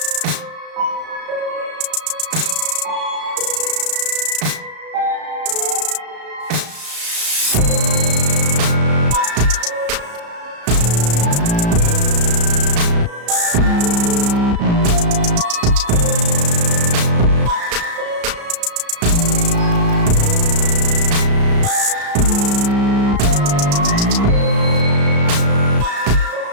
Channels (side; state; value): left; late; 35 ms